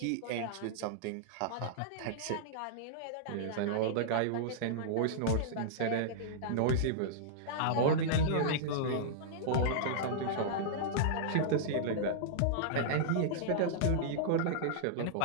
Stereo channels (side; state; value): both; different; correlation -0.02